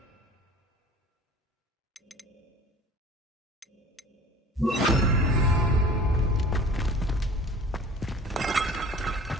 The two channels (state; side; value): normal; both; correlation 0.44